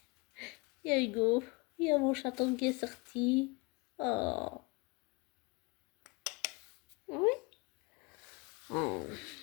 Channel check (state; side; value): quieter; right; 27.1 dB